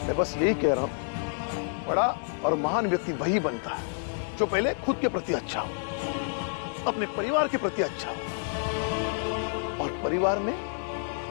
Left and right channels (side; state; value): right; silent; digital silence